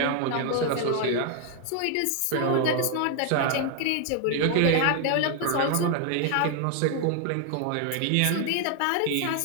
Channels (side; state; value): both; different; correlation 0.00